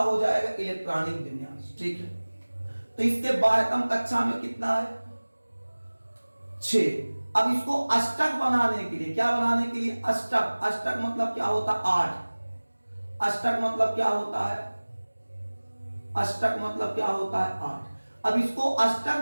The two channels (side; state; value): both; inverted; correlation -1.00